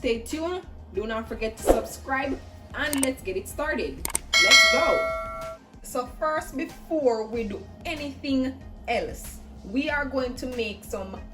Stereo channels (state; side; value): identical; both; correlation 1.00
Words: tuned. Do not forget to subscribe, and let's get it started. Let's go. So first, before we do anything else, we are going to make some